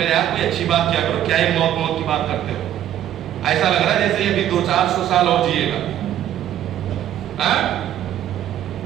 یار کوئی اچھی بات کیا کرو, کیا یہ موت کی بات کرتے ہو, ایسا لگ رہا ہے جیسے یہ بھی 200-400 سال اور جیے گا.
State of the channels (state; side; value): quieter; left; 11.5 dB